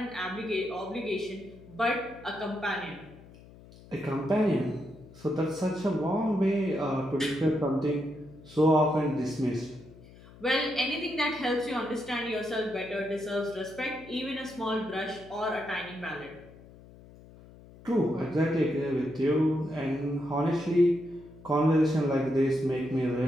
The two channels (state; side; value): noise; left; hum, 21 dB below the sound